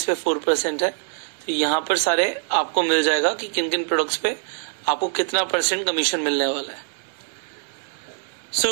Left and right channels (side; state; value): left; silent; digital silence